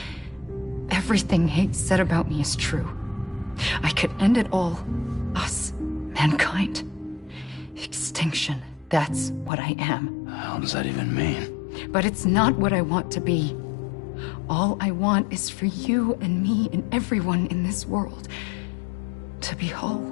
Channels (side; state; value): right; drops out; at 9.5 s